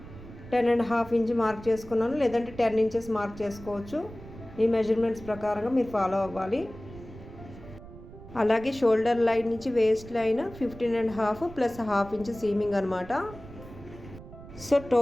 10.5 ఇంచ్ మార్క్ చేసుకున్నాను, లేదంటే 10 ఇంచెస్ మార్క్ చేసుకోవచ్చు. ఈ మెజర్మెంట్స్ ప్రకారంగా మీరు ఫాలో అవ్వాలి. అలాగే షోల్డర్ లైన్ నుంచి waist line 15.5 plus half inch seaming అనమాట. సో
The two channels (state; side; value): noise; right; rumble, 16 dB below the sound